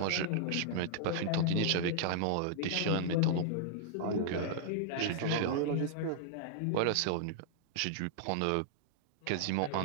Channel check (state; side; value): different; both; correlation -0.01